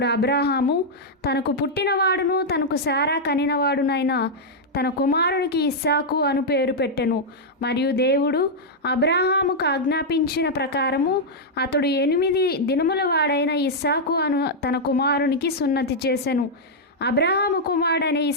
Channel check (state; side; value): normal; both; correlation -0.05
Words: అబ్రహాము తనకు పుట్టినవాడును తనకు శారా కనినవాడునైన తన కుమారునికి ఇస్సాకు అను పేరు పెట్టెను. మరియు దేవుడు అబ్రహాముకు ఆజ్ఞాపించిన ప్రకారము అతడు 8 దినముల వాడైన ఇస్సాకు అను తన కుమారునికి సున్నతి చేసెను. అబ్రహాము కుమారుడైన